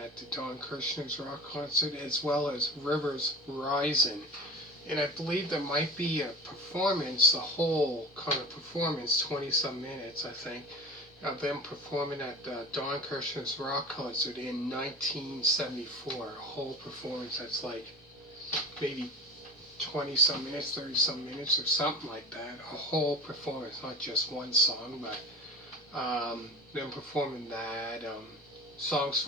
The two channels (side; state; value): both; normal; correlation 0.35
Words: the Don Kirshner's rock concert, as well as Rivers Rising. And I believe there might be a performance, the whole kind of performance, 20-some minutes, I think, of them performing at Don Kirshner's rock concert in 1974. A whole performance that's like maybe 20-some minutes, 30-some minutes, or something like that. A whole performance, not just one song, but them performing that, songs